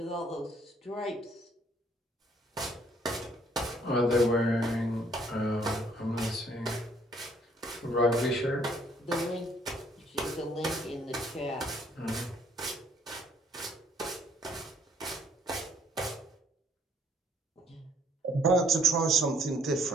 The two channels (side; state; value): both; normal; correlation 0.63